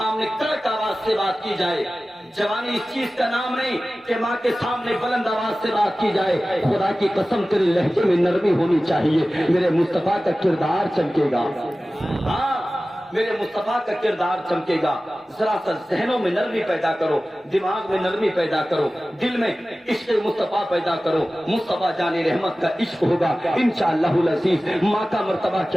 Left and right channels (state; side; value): normal; both; correlation 0.96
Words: کڑک آواز سے بات کی جائے، جوانی اس چیز کا نام نہیں کہ ماں کے سامنے بلند آواز سے بات کی جائے۔ خدا کی قسم تیرے لہجے میں نرمی ہونی چاہیے، میرے مصطفیٰ کا کردار چمکے گا۔ ہاں میرے مصطفیٰ کا کردار چمکے گا۔ ذرا سا ذہنوں میں نرمی پیدا کرو، دماغ میں نرمی پیدا کرو، دل میں عشق مصطفیٰ پیدا کرو۔ مصطفیٰ جان رحمت کا عشق ہوگا انشاءاللہ العزیز۔ ماں کا مرتبہ